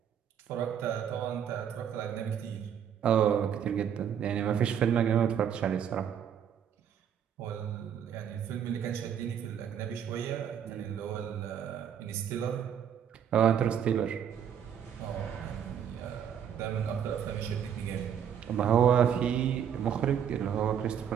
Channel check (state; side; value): quieter; left; 8.7 dB